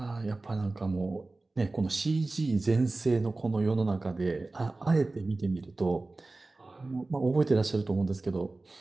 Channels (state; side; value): quieter; left; 3.2 dB